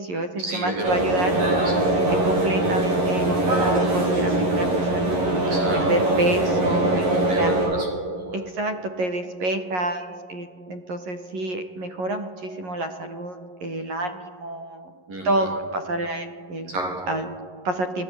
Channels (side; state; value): left; late; 11 ms